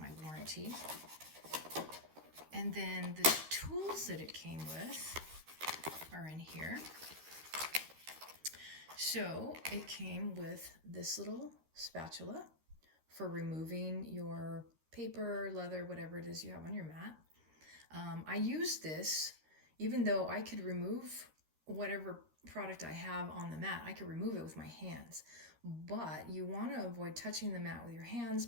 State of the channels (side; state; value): left; late; 13 ms